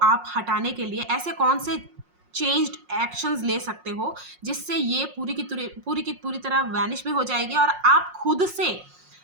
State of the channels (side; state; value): left; late; 5.5 ms